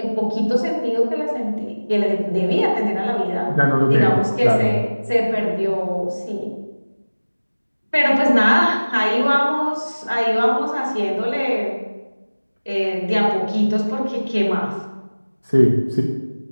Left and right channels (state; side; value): inverted; both; correlation -1.00